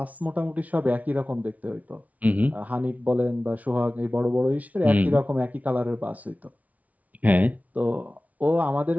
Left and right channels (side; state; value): left; late; 0.072 ms